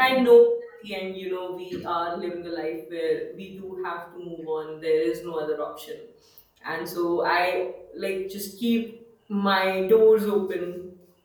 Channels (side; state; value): both; identical; correlation 1.00